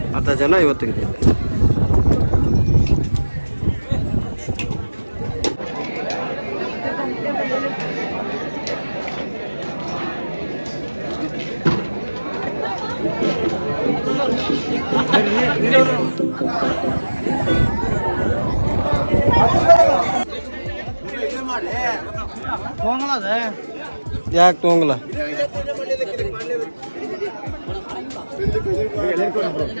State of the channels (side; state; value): both; inverted; correlation -1.00